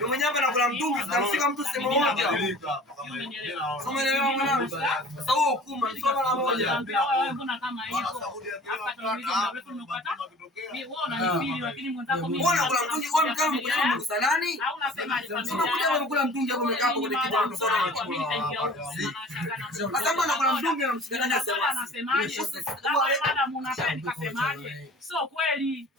mwenyewe anakula mtungi zinamshika mtu sehemu moja. Soma leo mwanangu. Sasa huo kuma mshika mara moja. Wewe mbona kama hivyo? Hapa tuulize mrefu nimepata. Mimi wewe unanifili lakini mwenzako mimi. Mbona kula mtungi kwa mkao mkao mkusanani? Au unasemaje familia? Sema kuja unakula mtungi hapo umekaa hapo kwenye kibanda sana. Sasa mbona kula mtungi na mshikana anasemaje? Wewe madam unapenda nikasemaje? Sio kweli,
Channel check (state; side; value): normal; both; correlation 0.44